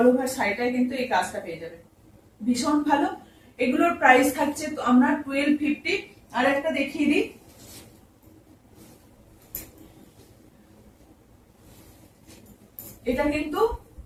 ওভার শাড়িটাই কিন্তু এই কাজটা পেয়ে যাবেন, ভীষণ ভালো। এগুলোর প্রাইস থাকছে আমরা 1250। আর একটা দেখিয়ে দিই, এটা কিন্তু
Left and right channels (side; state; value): both; identical; correlation 1.00